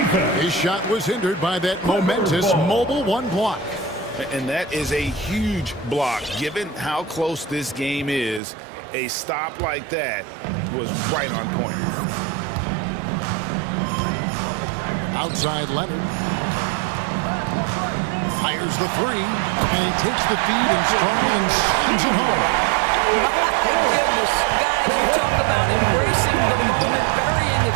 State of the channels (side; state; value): left; drops out; at 8.4 s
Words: His shot was hindered by that momentous mobile 1 block. And that is a huge block. Given how close this game is, a stop like that was right on point. Outside Leonard. Fires the 3, and he takes the feed in stride and slams it home. My goodness. Guys, you talk about embracing the moment, burying a